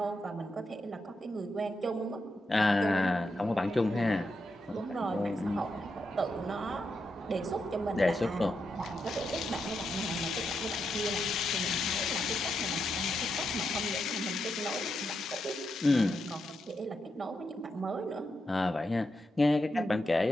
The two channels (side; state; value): both; normal; correlation 0.84